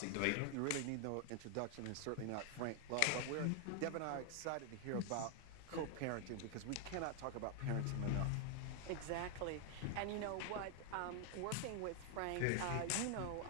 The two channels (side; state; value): both; different; correlation 0.00